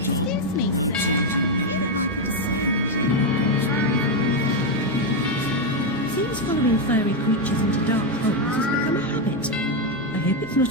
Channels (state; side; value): noise; left; hum, 21 dB below the sound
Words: me, sir. Seems following fiery creatures into dark holes has become a habit. I hope it's